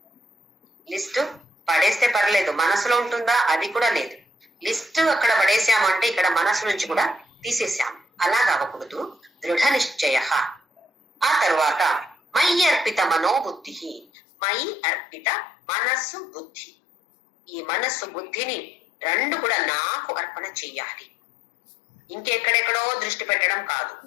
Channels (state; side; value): drops out; right; at 14.1 s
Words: లిస్ట్ పడేస్తే పర్లేదు, మనసులో ఉంటుందా అది కూడా లేదు. లిస్ట్ అక్కడ పడేసాము అంటే ఇక్కడ మనసు నుంచి కూడా తీసేసాము. అలాగ అవ్వకూడదు. దృఢ నిశ్చయ. ఆ తర్వాత మయి అర్పిత మనోబుద్ధి. మయి అర్పిత మనస్సు, బుద్ధి. ఈ మనస్సు, బుద్ధిని రెండు కూడా నాకు అర్పణ చెయ్యాలి. ఇంకెక్కడెక్కడో దృష్టి పెట్టడం కాదు,